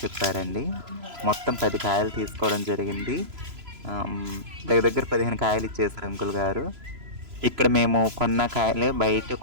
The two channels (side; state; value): left; late; 3.0 ms